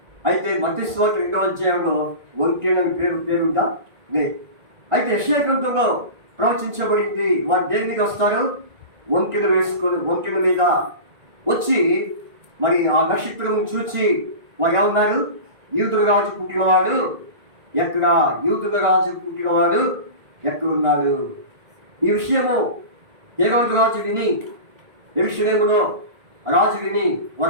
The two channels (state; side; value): late; left; 1.9 ms